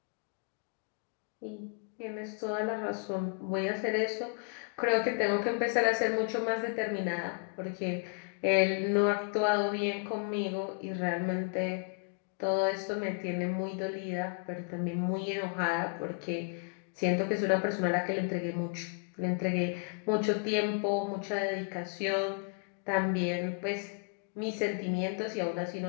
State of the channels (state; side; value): quieter; right; 39.1 dB